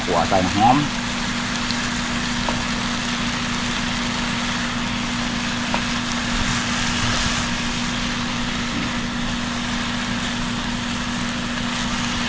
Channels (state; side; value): identical; both; correlation 1.00